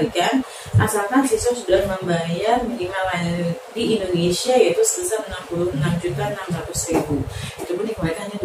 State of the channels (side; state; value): both; identical; correlation 1.00